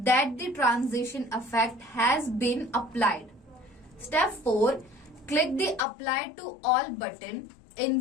that the transition effect has been applied. Step 4, click the apply to all button. In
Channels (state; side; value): drops out; right; at 5.9 s